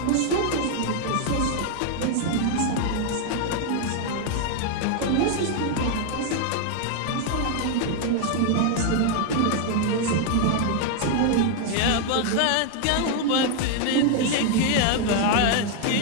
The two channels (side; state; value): both; different; correlation 0.00